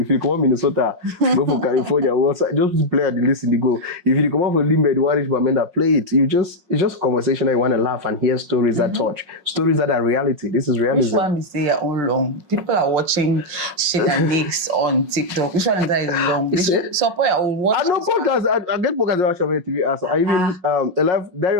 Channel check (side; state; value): left; late; 5.5 ms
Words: you come on Minnesota, go for California. Just play at the list in the go. If you come on for Limbe, the Warish Bamenda, play it. It's just a conversation that you want to laugh and hear stories that touch. Stories that are reality. This is realism. Which one is say your own long? People are watching shit and nicks on TikTok. Which one is that is long? Support your own watch. I know podcasts. I get podcasts that watch TV. So I even a live Diary